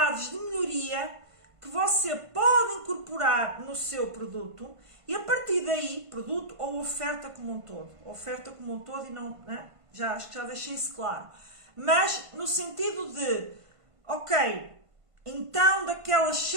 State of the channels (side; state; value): left; late; 1.5 ms